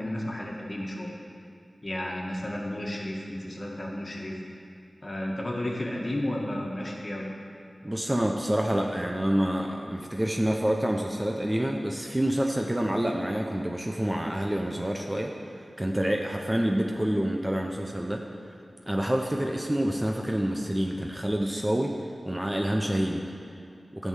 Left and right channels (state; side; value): normal; both; correlation 0.98